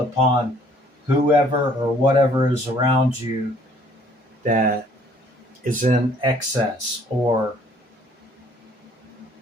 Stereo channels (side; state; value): both; normal; correlation 0.59